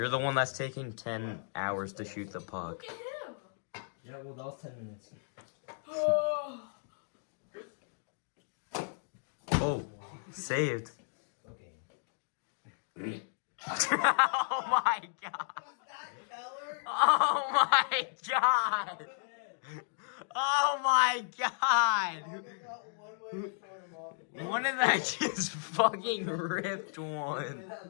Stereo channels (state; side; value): silent; right; digital silence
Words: the one that's taking 10 hours to shoot the puck. Look at him. Yeah, well, that was 10 minutes. Oh. Oh, saved. Okay. Oh my god. Keller? Oh my god. Oh my god. I got one way to throw him off. One of that just fucking ripped one.